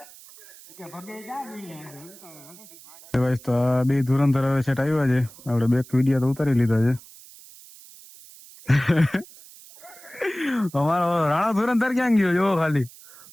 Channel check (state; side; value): noise; right; hiss, 21 dB below the sound